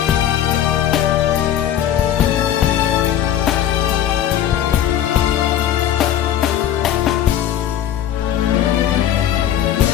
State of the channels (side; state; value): right; quieter; 10.9 dB